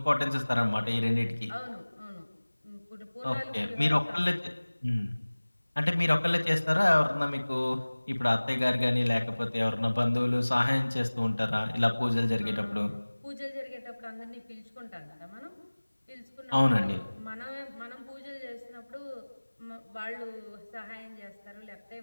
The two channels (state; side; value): inverted; both; correlation -1.00